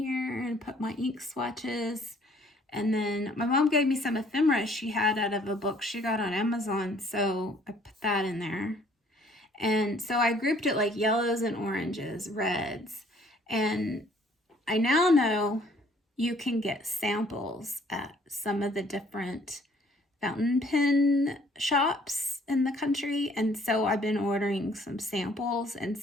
and put my ink swatches. And then my mom gave me some ephemera she had out of a book she got on Amazon. So I put that in there. And so I grouped it like yellows and oranges, reds. And I now know you can get samples at some of the different fountain pen shops in the country. And so I've been ordering some samples. And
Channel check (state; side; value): normal; both; correlation 0.60